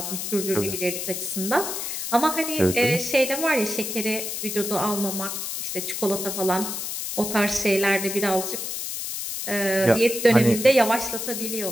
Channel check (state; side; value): noise; left; hiss, 4 dB below the sound